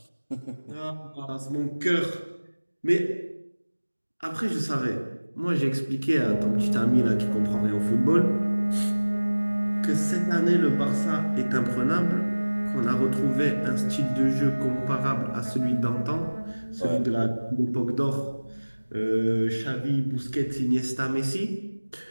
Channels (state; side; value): inverted; both; correlation -1.00